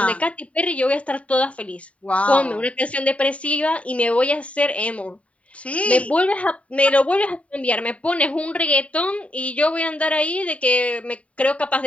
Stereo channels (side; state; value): right; late; 0.066 ms